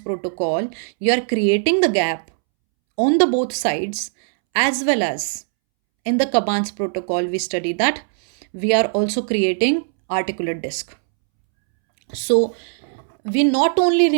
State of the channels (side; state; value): left; silent; 66 dB below the other